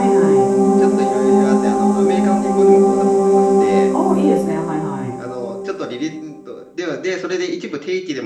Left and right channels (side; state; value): both; identical; correlation 1.00